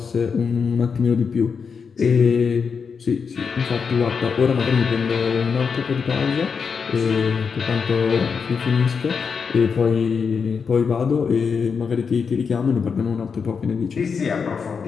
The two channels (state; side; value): quieter; right; 5.9 dB